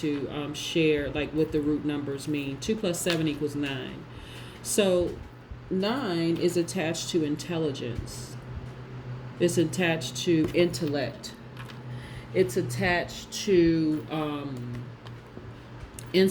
share like what the root numbers mean. 2 plus 7 equals 9. So 9 is attached to intelligence. It's attached to intellect. It's attached to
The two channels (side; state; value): both; identical; correlation 1.00